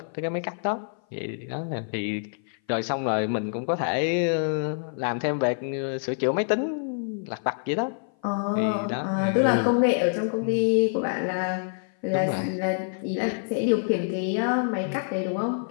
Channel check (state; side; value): silent; right; 56 dB below the other